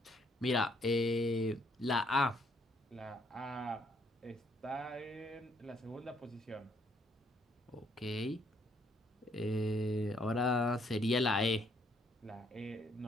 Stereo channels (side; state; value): both; normal; correlation 0.69